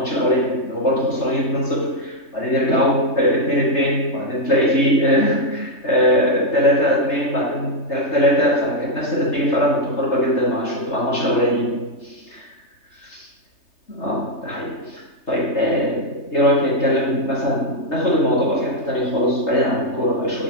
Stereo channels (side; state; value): right; late; 3.3 ms